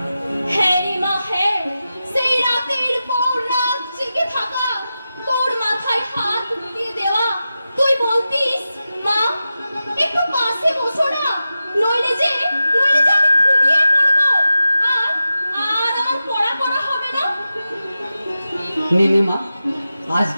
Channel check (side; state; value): both; inverted; correlation -0.92